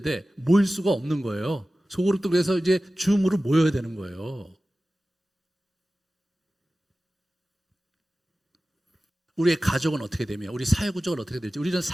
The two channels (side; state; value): both; normal; correlation 0.96